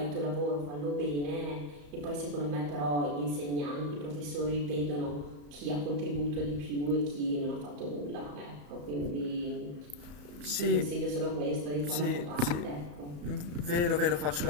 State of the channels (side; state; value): left; late; 34 ms